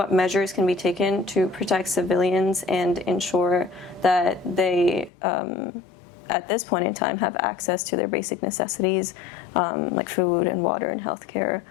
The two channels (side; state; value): right; drops out; at 5.1 s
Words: measures can be taken to protect civilians and ensure that they, at this point in time, have access to their basic necessities, like food and water and healthcare.